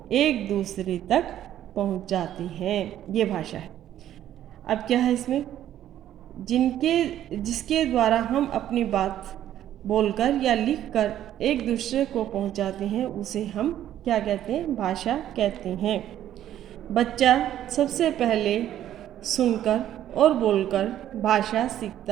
एक दूसरे तक पहुंचाते हैं, ये भाषा है। अब क्या है इसमें, जिसके द्वारा हम अपनी बात बोलकर या लिखकर एक दूसरे को पहुंचाते हैं, उसे हम क्या कहते हैं, भाषा कहते हैं। बच्चा सबसे पहले सुनकर और बोलकर भाषा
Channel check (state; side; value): quieter; left; 11.7 dB